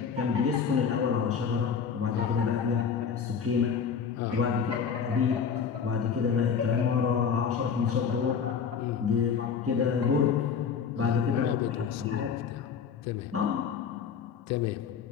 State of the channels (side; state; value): right; quieter; 6.7 dB